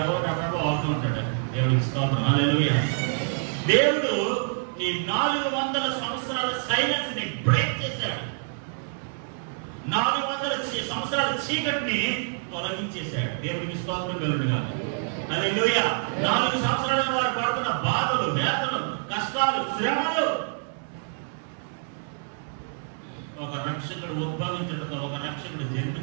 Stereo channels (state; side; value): silent; left; digital silence